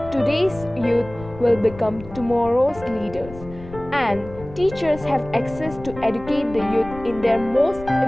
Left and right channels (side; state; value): left; noise; rumble, 16 dB below the sound